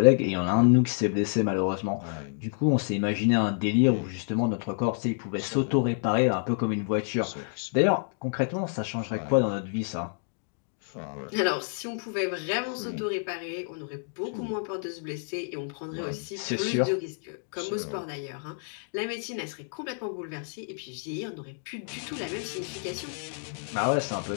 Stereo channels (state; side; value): silent; right; 59 dB below the other